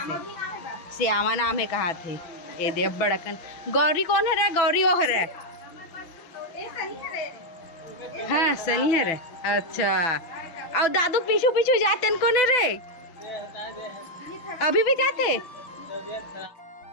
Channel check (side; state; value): right; late; 6.0 ms